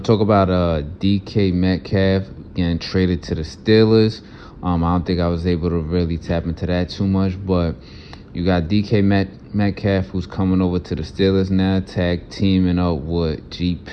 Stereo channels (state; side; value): identical; both; correlation 1.00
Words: about DK Metcalf getting traded to the Steelers, I don't think I was able to really tap into that too much, but you got DK Metcalf who's coming over to the Steelers now, tag teaming up with G.